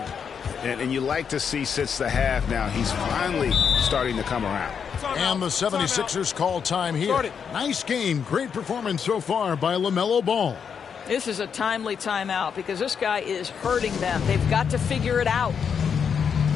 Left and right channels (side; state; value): right; quieter; 6.9 dB